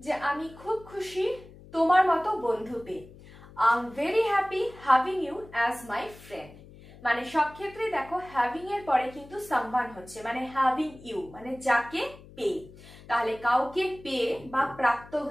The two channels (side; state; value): left; noise; hum, 20 dB below the sound